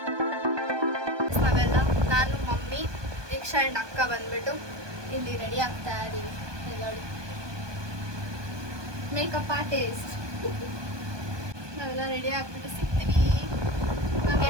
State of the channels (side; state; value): left; late; 1.2 ms